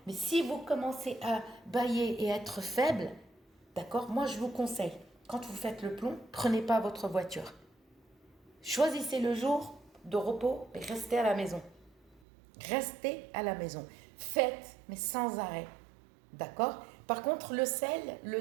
Mais si vous commencez à bâiller et être faible, d'accord? Moi je vous conseille, quand vous faites le plomb, prenez pas votre voiture. Choisissez le jour de repos et restez à la maison. Restez à la maison. Faites, mais sans arrêt. D'accord? Par contre, le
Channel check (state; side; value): drops out; left; at 12.2 s